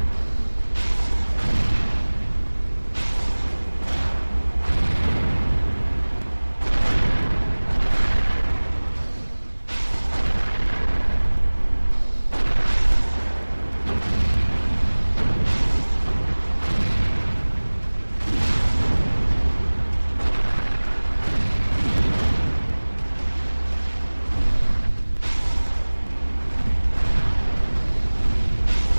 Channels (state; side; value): inverted; both; correlation -1.00